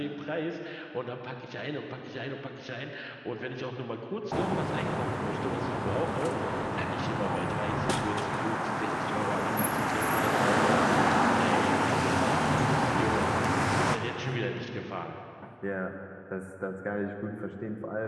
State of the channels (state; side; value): identical; both; correlation 1.00